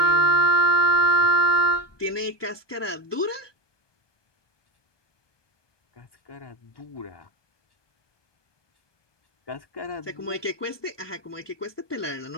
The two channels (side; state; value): right; late; 1.2 ms